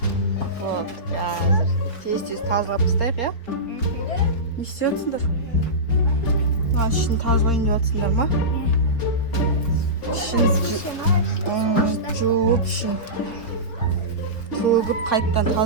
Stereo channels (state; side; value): late; right; 4.1 ms